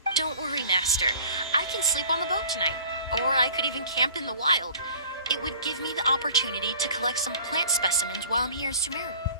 Don't worry, Master. I can sleep on the boat tonight. Or I could even camp in the wild. It would give me the opportunity to collect some plant specimens while I'm here in Sumeru.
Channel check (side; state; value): both; inverted; correlation -0.47